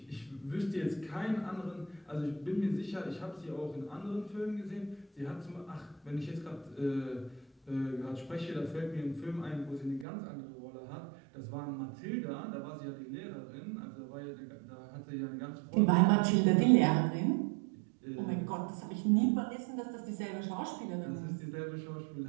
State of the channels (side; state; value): left; drops out; at 10.1 s